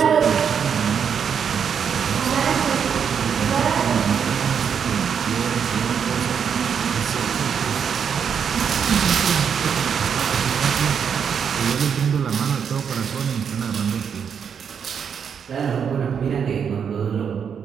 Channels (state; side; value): quieter; left; 7.3 dB